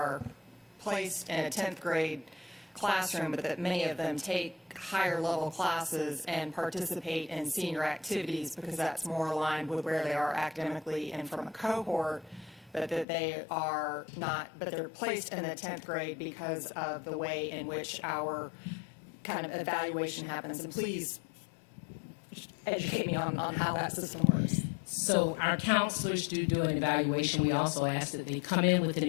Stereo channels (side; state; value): right; drops out; at 13.1 s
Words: placed in a 10th grade classroom, but that many of them take higher level classes and participate in senior activities because that's more aligned with where they are academically and from a cohort, but that they are not, but they're placed in the 10th grade because of the way in which our kind of evaluation happens. And please educate me on how that system works. So our counselors do an evaluation. We also ask that they come in with an